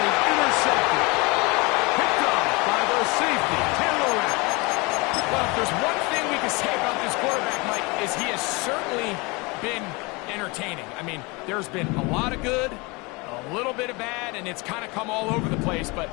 was intercepted. Picked off by the safety, Taylor Rapp. Well, if there's one thing we can say about this quarterback, Mike, is he has certainly been entertaining. I mean, there's been a lot of good, a little bit of bad, and it's kind of come all over the place. But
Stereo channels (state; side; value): quieter; right; 26.6 dB